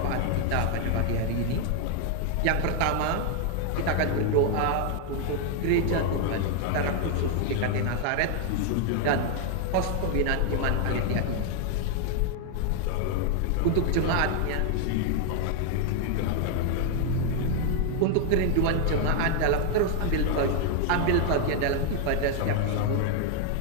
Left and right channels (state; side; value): different; both; correlation 0.00